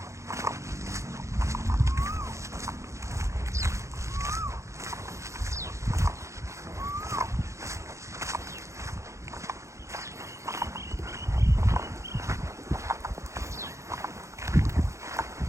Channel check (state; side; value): late; left; 0.14 ms